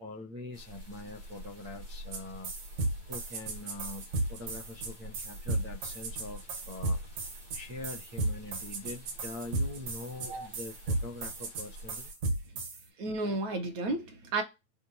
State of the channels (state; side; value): late; left; 9.0 ms